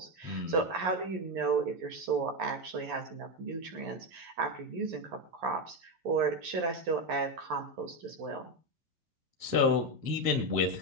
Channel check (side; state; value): left; late; 11 ms